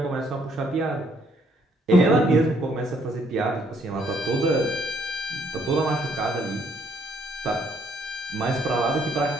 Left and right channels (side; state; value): both; normal; correlation 0.67